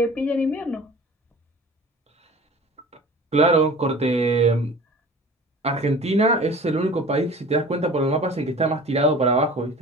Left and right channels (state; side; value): normal; both; correlation 0.42